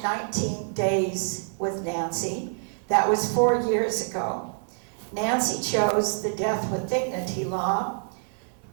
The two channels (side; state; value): left; silent; 59 dB below the other